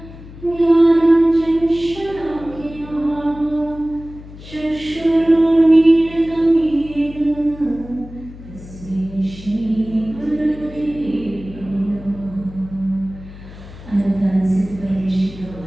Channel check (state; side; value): noise; left; hum, 16 dB below the sound